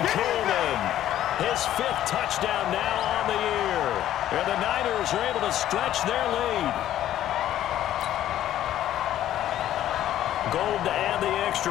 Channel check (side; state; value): right; quieter; 12.3 dB